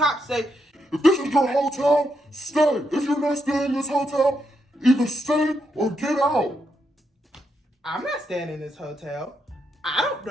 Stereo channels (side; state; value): both; normal; correlation 0.80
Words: say, If this is your hotel, stay. If you're not staying in this hotel, either stay or get out. I'm not staying in this hotel. I don't